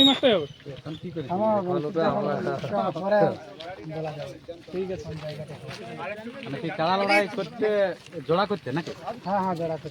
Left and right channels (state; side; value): identical; both; correlation 1.00